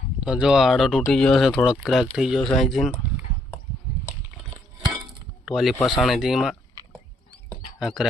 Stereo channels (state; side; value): normal; both; correlation 0.71